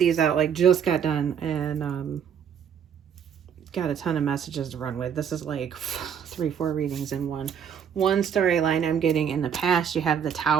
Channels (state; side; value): quieter; left; 8.0 dB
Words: out, like just got done, and got a ton of messages to run with. This is like 3-4 readings in one. One storyline I'm getting: in the past, you have the